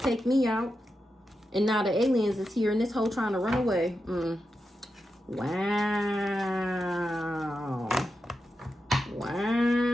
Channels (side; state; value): both; normal; correlation 0.88